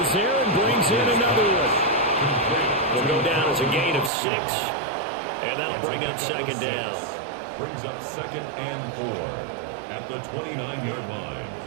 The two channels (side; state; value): left; drops out; at 4.1 s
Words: there and brings in another one. Will go down as a gain of 6. And that'll bring up second down. Brings up 2nd and 4 at the 29-yard line.